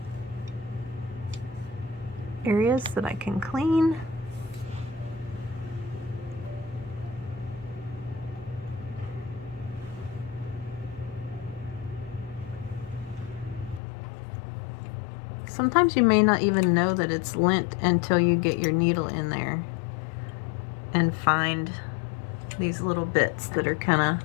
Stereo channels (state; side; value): drops out; right; at 13.8 s